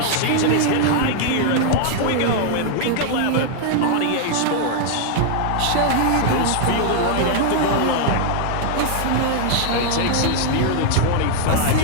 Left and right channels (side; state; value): both; different; correlation 0.00